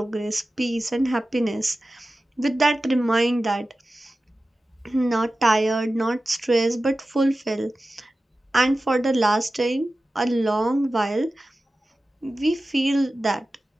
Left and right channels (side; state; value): both; normal; correlation 0.95